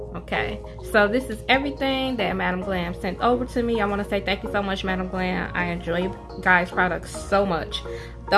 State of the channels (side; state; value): both; identical; correlation 1.00